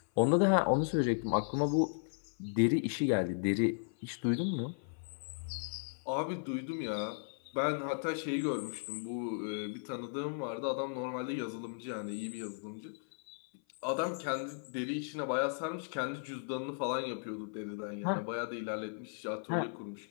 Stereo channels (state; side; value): silent; right; 54 dB below the other